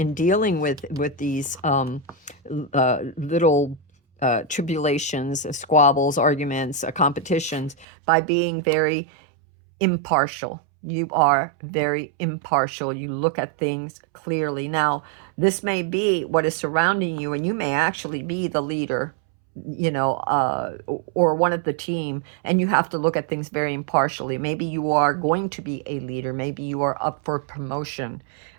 dealing with these little tribulations, squabbles, arguments, competitions, by being very impartial. You are very impartial. You look at things clearly. Now, this may be what is surrounding you, and you may actually be the leader, or one of the team, and you have to look at things very impartially. Maybe you are going to be a leader. Maybe you are up for promotion.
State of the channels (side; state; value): left; drops out; at 7.9 s